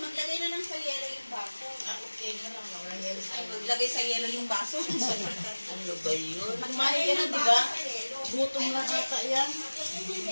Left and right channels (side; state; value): both; inverted; correlation -1.00